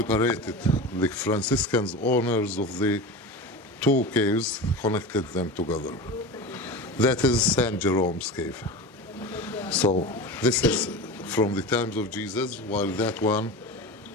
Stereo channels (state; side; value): normal; both; correlation 0.28